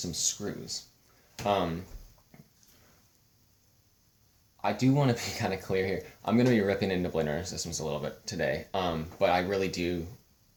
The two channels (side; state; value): both; identical; correlation 1.00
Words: screws. Um, I do want to be kind of clear here. I'm going to be ripping into Bladerunners systems a little bit today, but I really do